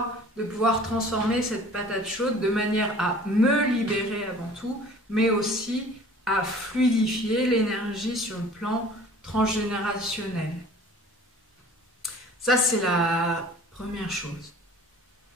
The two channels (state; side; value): normal; both; correlation 0.47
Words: de pouvoir transformer cette patate chaude de manière à me libérer avant tout, mais aussi à fluidifier l'énergie sur le plan transgénérationnel. Ça, c'est la première chose.